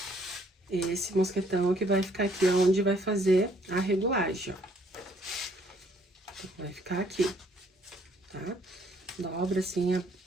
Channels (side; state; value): both; normal; correlation 0.65